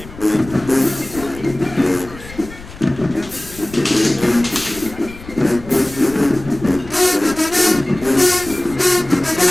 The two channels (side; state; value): left; noise; rumble, 16 dB below the sound